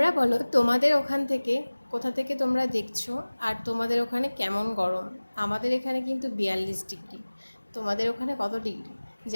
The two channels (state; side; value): inverted; both; correlation -1.00